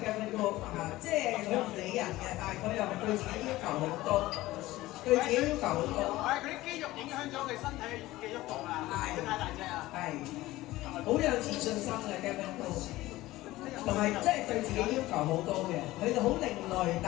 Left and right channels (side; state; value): right; quieter; 17.4 dB